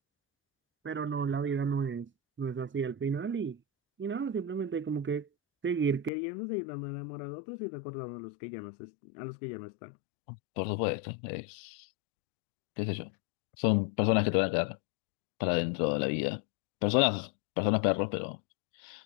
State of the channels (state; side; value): drops out; right; at 6.1 s